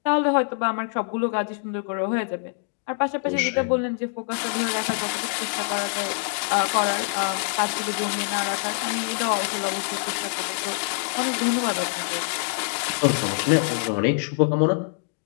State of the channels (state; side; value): silent; right; digital silence